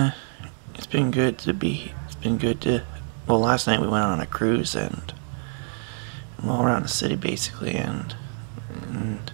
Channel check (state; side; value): silent; left; 61 dB below the other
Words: been good to well, last night we went on a cruise and all around the city basically, and